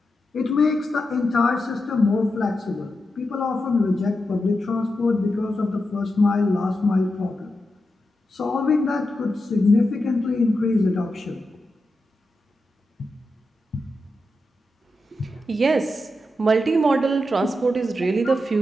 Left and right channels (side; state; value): both; normal; correlation 0.88